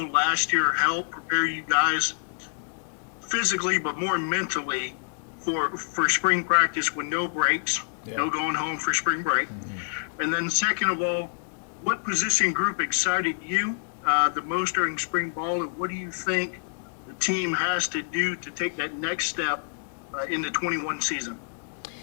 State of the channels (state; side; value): silent; right; digital silence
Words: last year help prepare you guys physically but more mentally for spring practice with no breaks, no going home for spring break? And then second of all, what position group excited you the most during spring ball, and what do you think the team has to do to take that next step in the 21 season?